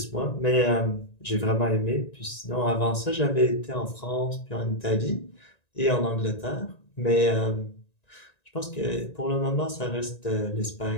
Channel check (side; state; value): right; late; 1.9 ms